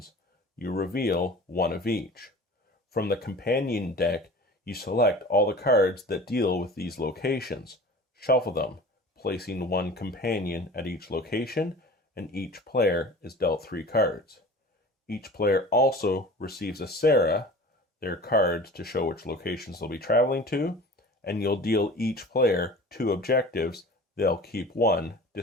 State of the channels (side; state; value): both; normal; correlation 0.40